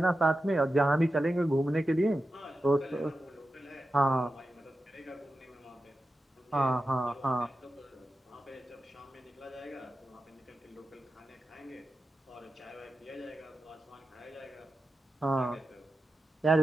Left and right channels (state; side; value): normal; both; correlation 0.91